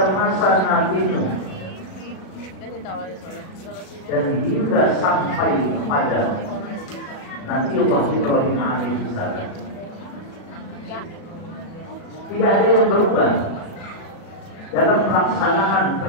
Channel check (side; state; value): right; late; 37 ms